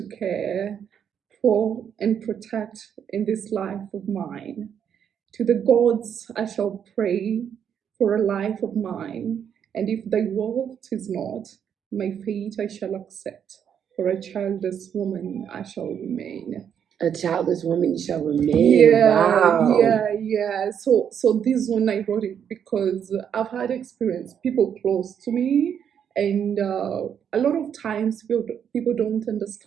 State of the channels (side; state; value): left; quieter; 8.3 dB